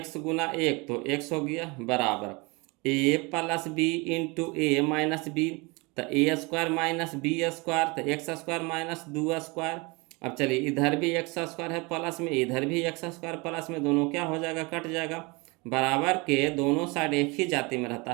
गुना 1 तो एक्स हो गया बराबर ए प्लस बी इंटू ए माइनस बी, तो ए स्क्वायर माइनस बी स्क्वायर तो एक्स स्क्वायर माइनस 2 स्क्वायर। अब चलिए इधर भी एक्स स्क्वायर है प्लस में, इधर भी एक्स स्क्वायर प्लस में, दोनों क्या हो जाएगा कट जाएगा। बराबर के दोनों साइड एक ही जाति में रहता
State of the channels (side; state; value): left; quieter; 27.0 dB